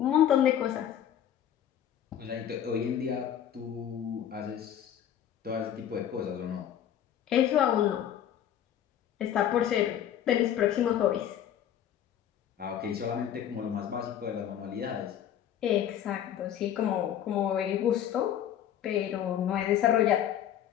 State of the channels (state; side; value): quieter; right; 10.2 dB